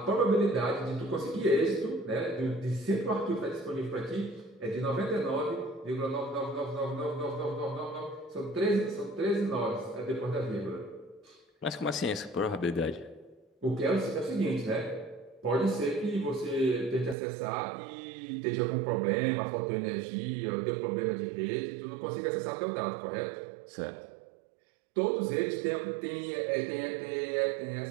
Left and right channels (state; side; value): drops out; left; at 17.2 s